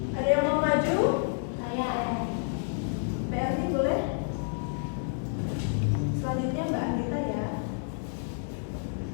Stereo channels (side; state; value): right; silent; 58 dB below the other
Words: Ada yang mau maju? Saya. PRT boleh? Selanjutnya Mbak Anita ya.